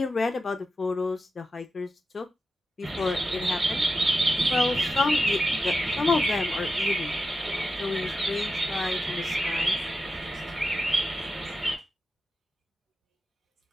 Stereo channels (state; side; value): normal; both; correlation 0.89